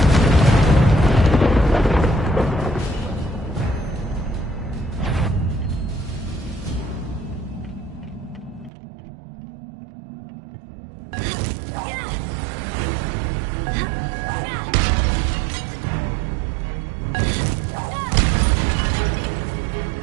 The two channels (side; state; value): left; drops out; at 8.7 s